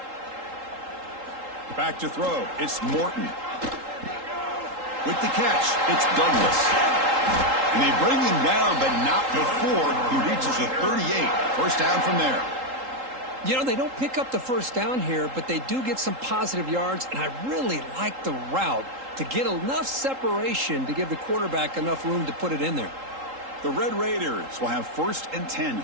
Back to throw. It's Morton. With the catch, it's Douglas. And they bring him down, but not before he reaches the 38. 1st down from there. You know, they don't pick up the 1st down here, but they do get some positive yards, and I really like the route to get enough separation to give the quarterback enough room to put it in there. The Red Raiders will have 1st and 10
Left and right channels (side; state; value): left; late; 3.8 ms